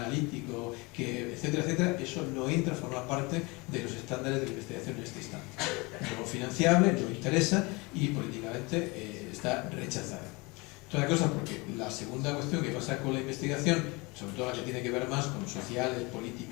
etcétera, etcétera, eso no entra a formar parte de los estándares de la investigación en este instante. No financiable, no interesa y políticamente está rechazada. Otra cosa, porque la segunda cuestión que pasa con la investigación, sobre todo la que tiene que ver más con sociales,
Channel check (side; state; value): right; quieter; 25.9 dB